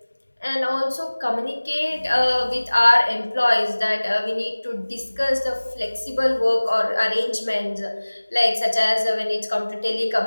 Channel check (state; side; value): inverted; both; correlation -1.00